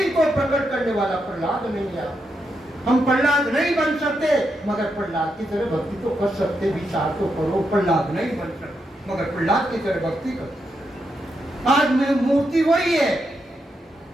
को प्रकट करने वाला प्रहलाद नहीं आता। हम प्रहलाद नहीं बन सकते, मगर प्रहलाद की तरह भक्ति तो कर सकते। विचार तो करो, प्रहलाद नहीं बन सकते मगर प्रहलाद की तरह भक्ति कर। आज में मूर्ति वही है,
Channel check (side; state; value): both; normal; correlation 0.83